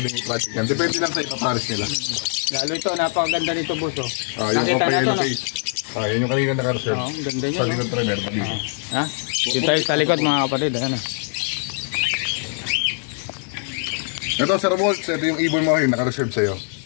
i-project yan. Depende lang sa ipapares nila. Lalo ito, napakaganda nito, boss, oh. Yung Nakita opa na to, yellow no? face. Yan yung kanina naka-reserve. Oo, ang ganda niya, Sa no? likod trainer. Ha? Dito tayo sa likod, mga kapatid, ayan, oh. Ito, Sir Waltz, ito yung ibon mo yung naka-reserve sa'yo.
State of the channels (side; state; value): right; silent; digital silence